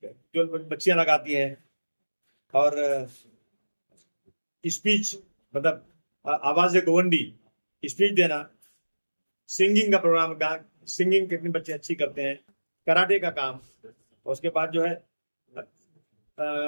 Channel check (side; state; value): both; inverted; correlation -1.00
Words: जो बच्चियां लगाती हैं, और स्पीच मतलब आवाज गोवंडी स्पीच देना, सिंगिंग का प्रोग्राम का, सिंगिंग कितने बच्चे अच्छी करते हैं, कराटे का काम। और उसके बाद जो है